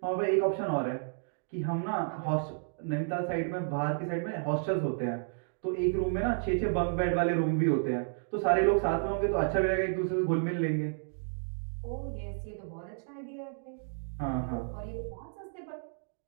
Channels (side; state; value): left; silent; digital silence